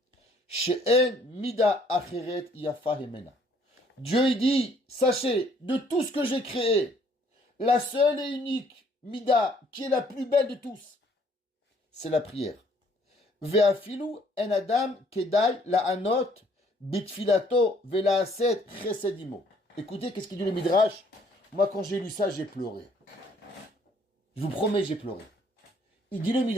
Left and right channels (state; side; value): normal; both; correlation 0.63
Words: She'en mida acheret yafa hemena. Dieu il dit, sachez, de tout ce que j'ai créé, la seule et unique mida qui est la plus belle de tous, c'est la prière. Ve'afilu en adam kedai la anot bitfilato ve'laaset chesedimo. Écoutez, qu'est-ce qu'il dit le Midrash? Moi, quand j'ai lu ça, j'ai pleuré. Je vous promets, j'ai pleuré. Il dit le